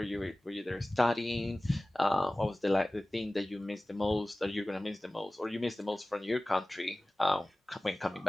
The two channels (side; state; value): both; normal; correlation 0.98